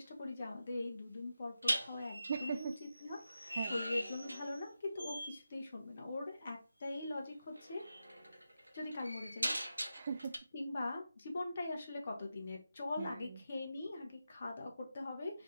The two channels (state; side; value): inverted; both; correlation -0.89